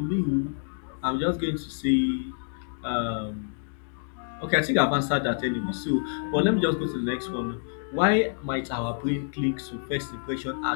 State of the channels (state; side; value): silent; right; digital silence